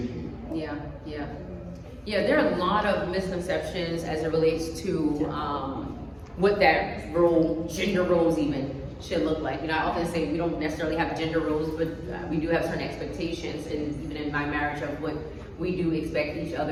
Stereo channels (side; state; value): both; identical; correlation 1.00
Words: Yeah, yeah. Yeah, there are a lot of misconceptions as it relates to what that role, gender roles even, should look like. You know, I often say we don't necessarily have gender roles, but we do have certain expectations, and even in my marriage, of what we do expect each